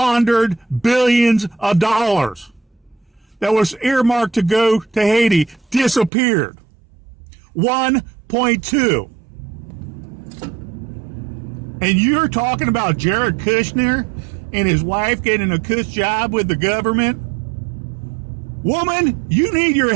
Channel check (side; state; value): left; drops out; at 6.1 s